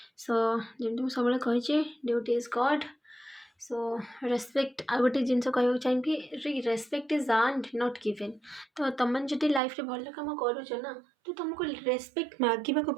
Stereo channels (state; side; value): drops out; left; at 9.6 s